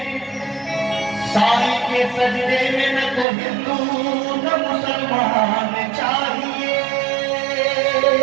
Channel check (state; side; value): drops out; left; at 3.2 s